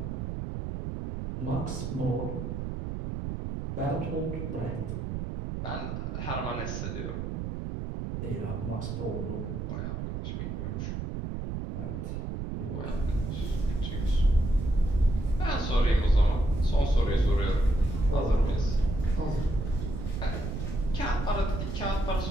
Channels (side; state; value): right; noise; rumble, 4 dB below the sound